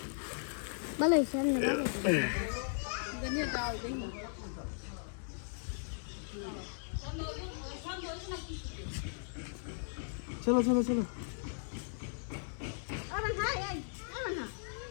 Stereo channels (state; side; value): silent; right; 53 dB below the other